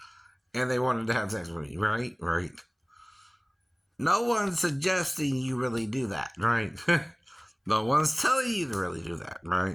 and they wanted to have sex with me, right? Right. No one's suggesting you really do that, right? No one's telling you to really do that,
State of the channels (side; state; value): both; identical; correlation 1.00